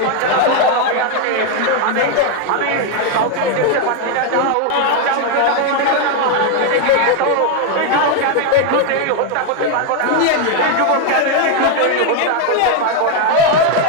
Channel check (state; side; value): different; both; correlation 0.01